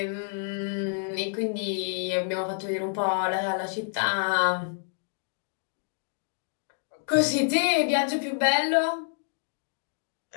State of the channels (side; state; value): right; silent; digital silence